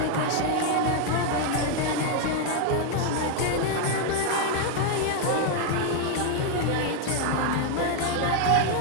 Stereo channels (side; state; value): both; different; correlation 0.01